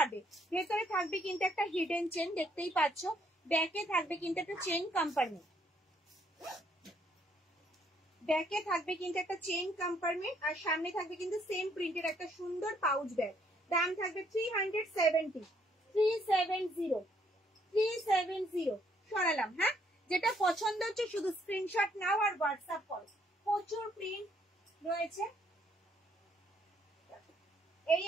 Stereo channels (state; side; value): normal; both; correlation 0.69